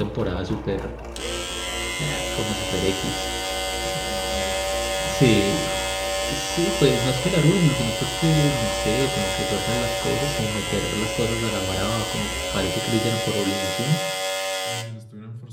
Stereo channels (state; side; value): identical; both; correlation 1.00